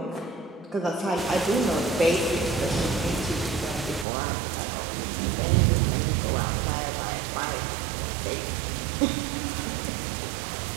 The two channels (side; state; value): left; drops out; at 4.0 s